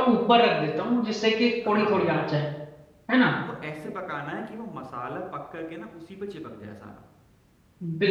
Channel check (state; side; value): identical; both; correlation 1.00